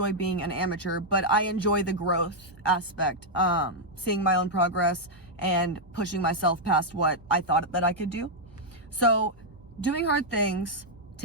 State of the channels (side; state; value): both; normal; correlation -0.03